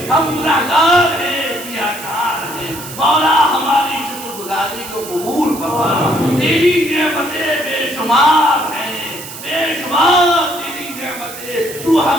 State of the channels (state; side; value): noise; right; hiss, 12 dB below the sound